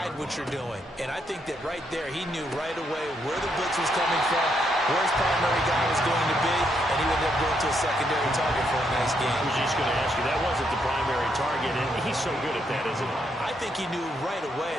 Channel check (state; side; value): normal; both; correlation 0.76